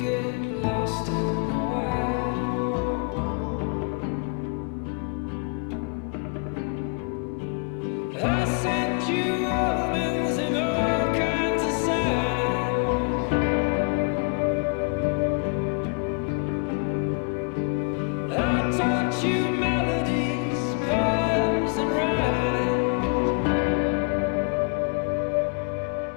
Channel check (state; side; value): quieter; right; 35.4 dB